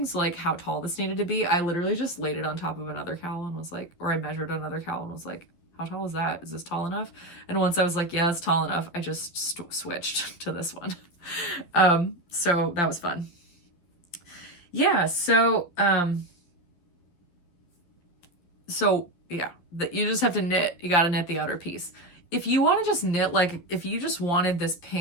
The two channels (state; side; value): late; right; 12 ms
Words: So like how tall this needed to be. I literally just laid it on top of another cowl and was like, or I measured another cowl and was like, how tall is that? Is this tall enough? And once I was like, yeah, it's tall enough, I just switched to this one. So that was fun. Yeah. So yeah, you just have to knit. You got to knit the outer piece. If you want to just knit, like if you just wanted this